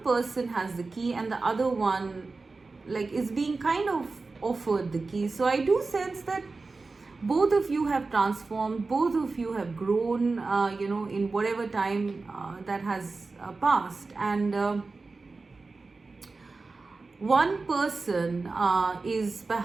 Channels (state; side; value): quieter; left; 3.9 dB